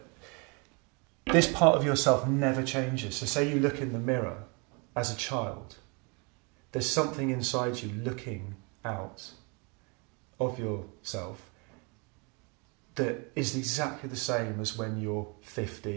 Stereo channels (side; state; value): left; quieter; 31.8 dB